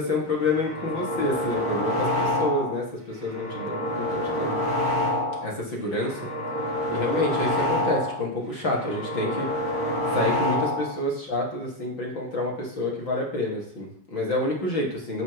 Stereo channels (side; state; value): right; late; 5.9 ms